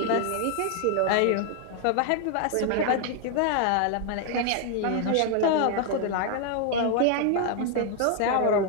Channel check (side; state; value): both; different; correlation 0.00